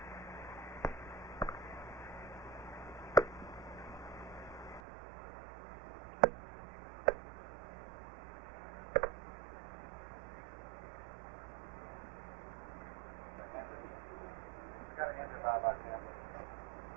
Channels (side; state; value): left; drops out; at 4.8 s